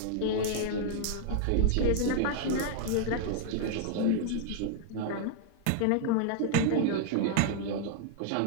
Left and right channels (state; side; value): different; both; correlation 0.00